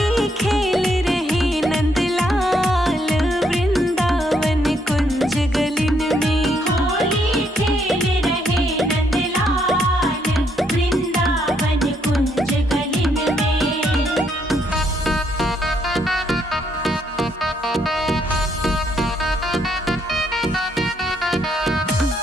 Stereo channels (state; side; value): normal; both; correlation 0.73